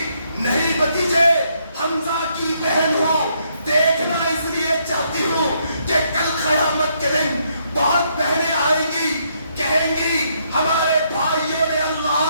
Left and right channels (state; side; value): inverted; both; correlation -0.73